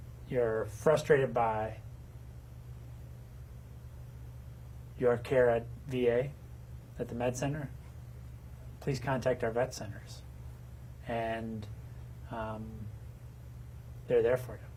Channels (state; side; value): identical; both; correlation 1.00